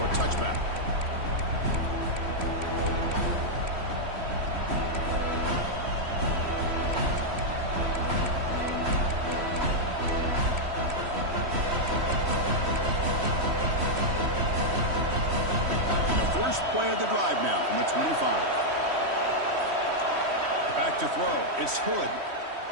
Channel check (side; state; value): left; late; 3.1 ms